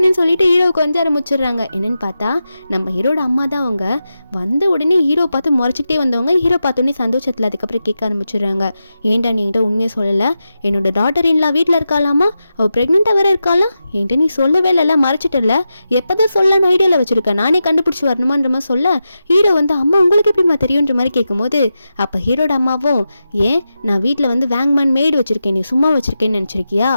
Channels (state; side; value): inverted; both; correlation -0.90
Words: சொல்லிட்டு ஹீரோ கொஞ்சம் ஆரம்பிச்சிடுறாங்க. என்னன்னு பார்த்தா நம்ம ஹீரோட அம்மா தான். அவங்க வந்த உடனே ஹீரோ பார்த்து முறைச்சிக்கிட்டே வந்தவங்க ஹீரோ பார்த்தோன்னே சந்தோஷத்தில் அதுக்கப்புறம் கேட்க ஆரம்பிச்சிடுறாங்க, ஏன்டா நீ என்கிட்ட உண்மையை சொல்லலை, என்னோட டாட்டர் இன்லா வீட்டில் இருக்காளாமா, அவள் ப்ரெக்னெண்ட்டாக வேற இருக்காளா, என்கிட்ட நீ சொல்லவே இல்லை மறைச்சிட்டல, எப்போதான் சொல்லலான்னு ஐடியாவில் வச்சுருக்கேன், நானே கண்டுபிடிச்சி வரணுமான்ற மாதிரி சொல்ல ஹீரோ வந்து அம்மா உங்களுக்கு எப்படிமா தெரியுன்ற மாதிரி கேட்கும்போது அப்போ ஹீரோட அம்மாவும் ஏன் நான் வீட்டில் வந்து வேங்மேன் மேய்டு வச்சுருக்கேன், நீ சும்மா வச்சுருக்கேன்னு நினச்சிருக்கியா,